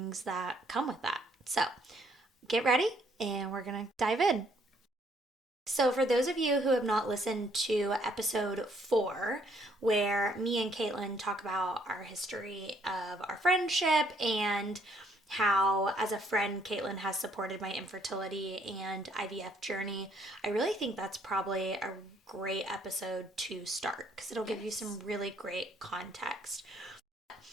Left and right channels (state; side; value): normal; both; correlation 0.66